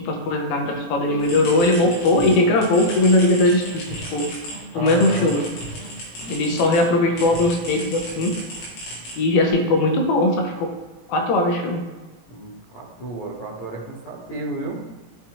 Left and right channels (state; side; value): late; right; 18 ms